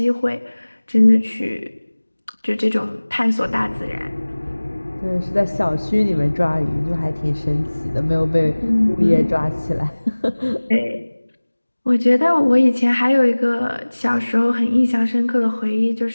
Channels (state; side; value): inverted; both; correlation -1.00